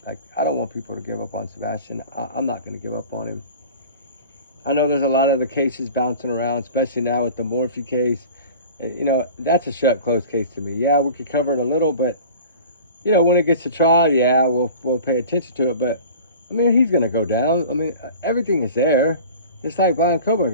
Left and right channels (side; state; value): both; inverted; correlation -0.40